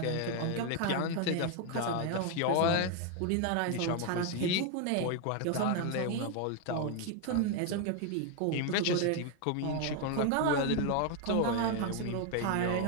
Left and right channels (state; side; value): different; both; correlation 0.01